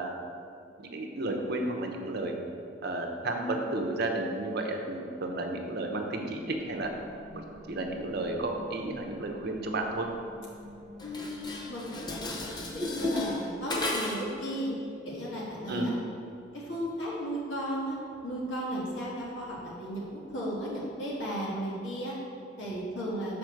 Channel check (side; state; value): both; normal; correlation 0.37